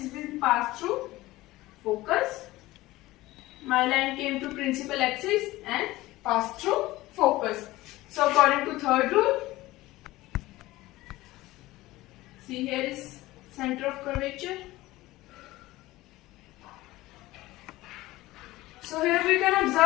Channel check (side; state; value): right; quieter; 18.1 dB